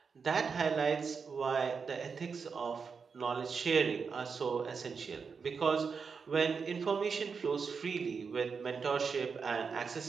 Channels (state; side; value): quieter; left; 5.5 dB